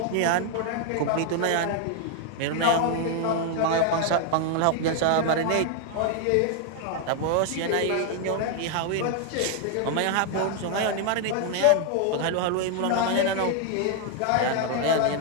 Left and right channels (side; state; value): both; different; correlation 0.00